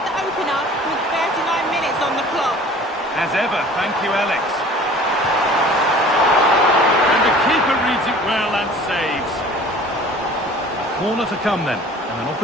the opener with 39 minutes on the clock. As ever, thank you, Alex. And the keeper reads it well and saves. Corner to come then. And an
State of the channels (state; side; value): normal; both; correlation 0.47